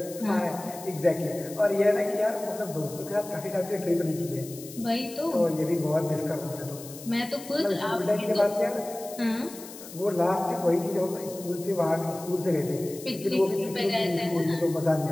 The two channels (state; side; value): noise; left; hiss, 15 dB below the sound